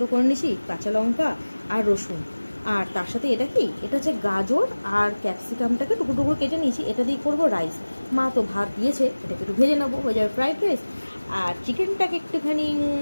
করে নিয়েছি, কাঁচা লঙ্কা আর রসুন। আর তার সাথে এটা কি, এটা হচ্ছে গাজর আর ক্যাপসিকামটাকে টুকরো টুকরো কেটে নিয়েছি। এটা দিয়ে করবো রাইস। মা তো ভাত দিয়েছে, এটাকে একটু ভেজে নেবো, হয়ে যাবে ফ্রাইড রাইস। আর চিকেনটাকে একটুখানি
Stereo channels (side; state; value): both; inverted; correlation -1.00